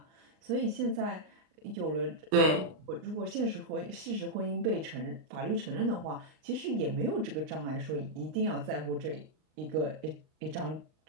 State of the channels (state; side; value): late; left; 39 ms